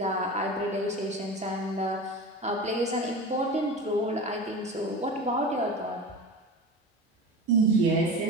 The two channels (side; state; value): both; normal; correlation 0.30